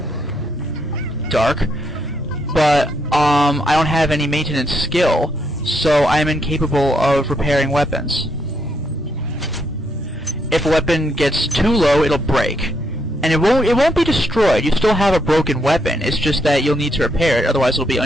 Dark. But, I don't have any maintenance skill, so I'm incapable of repairing weapons. If a weapon gets too low, it'll break. And it won't be destroyed, you still have a broken weapon, it's just that you'll need to repair it, otherwise it'll be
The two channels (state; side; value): normal; both; correlation 0.76